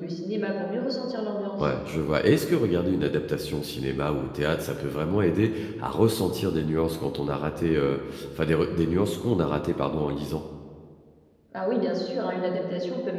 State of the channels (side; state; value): both; identical; correlation 1.00